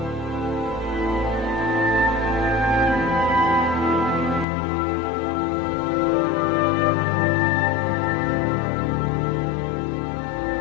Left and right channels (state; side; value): drops out; right; at 4.5 s